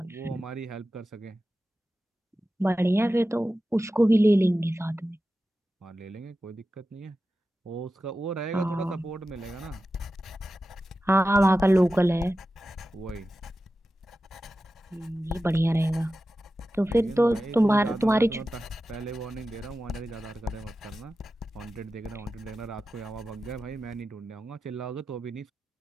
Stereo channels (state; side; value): normal; both; correlation 0.93